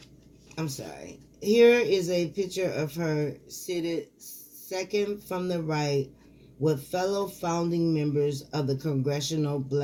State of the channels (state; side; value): identical; both; correlation 1.00